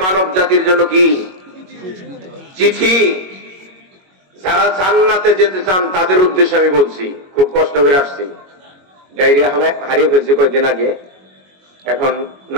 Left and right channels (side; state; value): left; late; 21 ms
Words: মানব জাতির জন্য কি চিঠি। যারা জান্নাতে যেতে চান তাদের উদ্দেশ্যে আমি বলছি, খুব কষ্ট করে আসছি। ডায়রিয়া হারিয়ে ফেলছি কয়েকদিন আগে, এখন